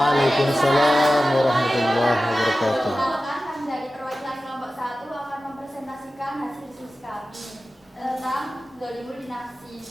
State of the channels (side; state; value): both; normal; correlation 0.95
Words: warahmatullahi wabarakatuh. Kami dari perwakilan kelompok 1 akan mempresentasikan hasil diskusi kami tentang zalimul li nafsi.